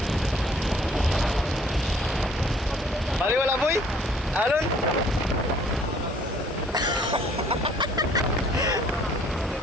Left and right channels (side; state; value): both; normal; correlation 0.58